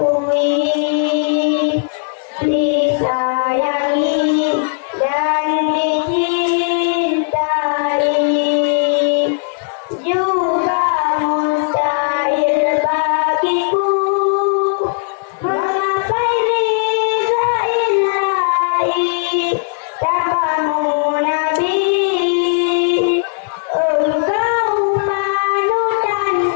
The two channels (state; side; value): silent; right; digital silence